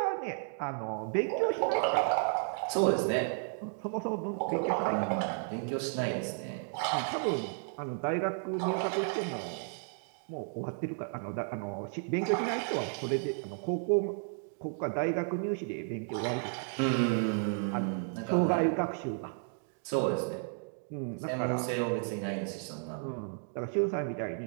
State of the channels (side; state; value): left; silent; 56 dB below the other